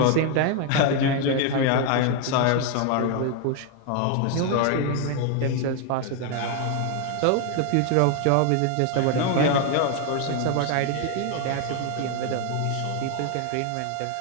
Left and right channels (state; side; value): different; both; correlation 0.01